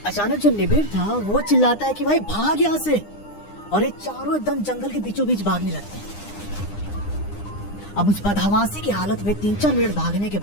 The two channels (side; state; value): right; late; 9.8 ms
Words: अचानक जो निबिर था वो चिल्लाता है कि भाई भाग यहाँ से, और ये चारों एकदम जंगल के बीचों बीच भागने लगते हैं। अब उस बदहवासी की हालत में 3-4 मिनट भागने के